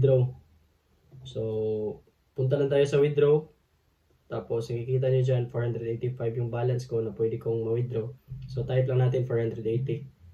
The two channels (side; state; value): both; identical; correlation 1.00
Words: So punta lang tayo sa withdraw. Tapos nakikita nyo dyan 485 yung balance ko na pwede kong ma-withdraw. So type lang natin 480